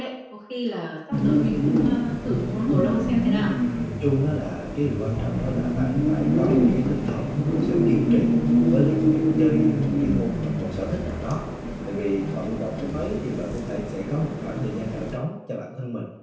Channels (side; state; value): both; identical; correlation 1.00